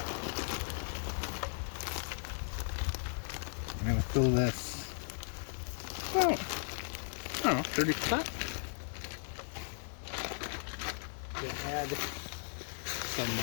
I'm going to fill this about, I don't know, 30%. Going to add some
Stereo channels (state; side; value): silent; right; digital silence